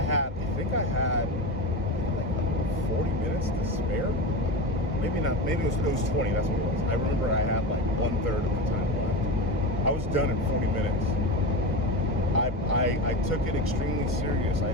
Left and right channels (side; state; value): both; normal; correlation 0.23